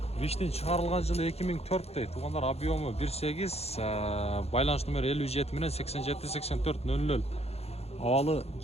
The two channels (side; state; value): right; late; 0.30 ms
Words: Виштин чыгарылган жылы 2004 дейт. Туугандар, объему 1.8, байланыш номери 57 менен 87-84-00. Абалы